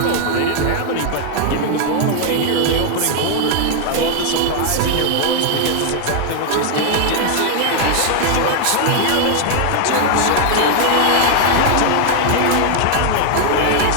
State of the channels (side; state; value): both; different; correlation 0.00